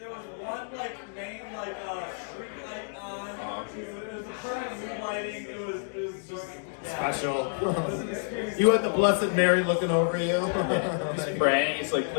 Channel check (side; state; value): right; silent; digital silence